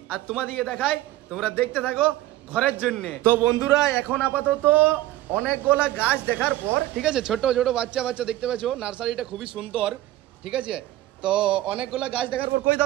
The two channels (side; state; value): left; quieter; 15.5 dB